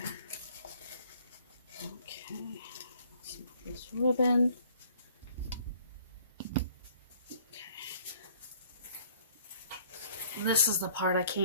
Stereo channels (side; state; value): both; inverted; correlation -0.57